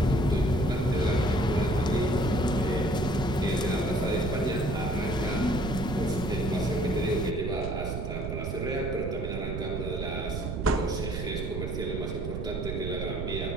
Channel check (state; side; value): noise; right; rumble, 3 dB below the sound